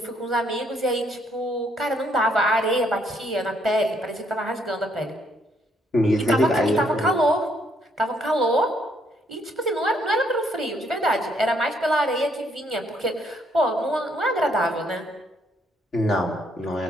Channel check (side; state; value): both; normal; correlation 0.70